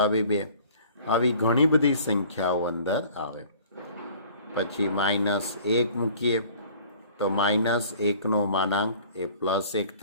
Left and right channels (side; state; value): both; inverted; correlation -0.51